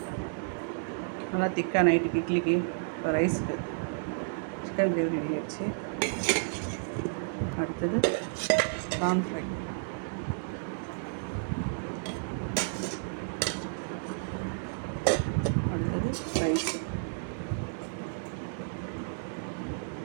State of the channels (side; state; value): left; silent; 57 dB below the other